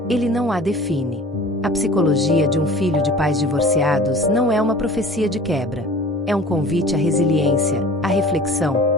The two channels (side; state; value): both; normal; correlation 0.43